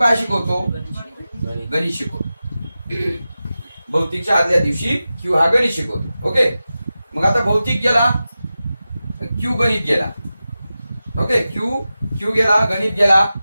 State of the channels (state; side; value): inverted; both; correlation -0.94